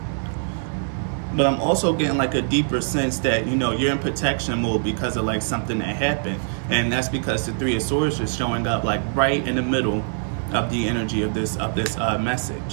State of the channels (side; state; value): left; silent; digital silence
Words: But I'm also getting like a deeper sense that, you know, you're in protection mode because of like something that happened. And that's because the Three of Swords is showing up like right in the middle of the energy of this